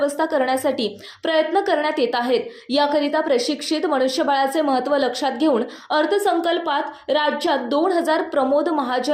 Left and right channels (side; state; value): both; identical; correlation 1.00